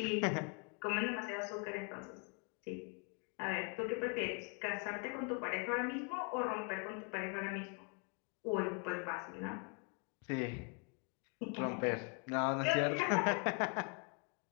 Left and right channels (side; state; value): right; quieter; 36.7 dB